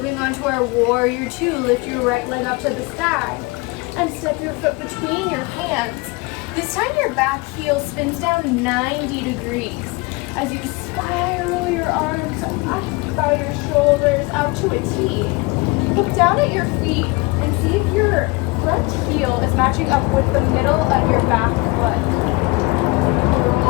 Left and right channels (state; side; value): quieter; right; 25.3 dB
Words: on to our warrior 2. Lift your right leg up to the sky. And step your foot between your hands. This time your back heel spins down 90 degrees. As you spiral your arms up by your shoulders out to a T. Look down at your feet and see if your front heel is matching up with the middle of your back foot.